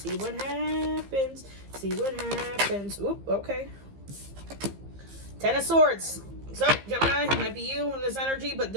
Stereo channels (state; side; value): late; left; 15 ms